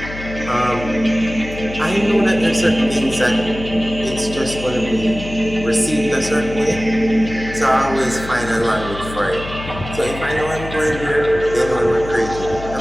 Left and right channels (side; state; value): left; noise; hum, 11 dB below the sound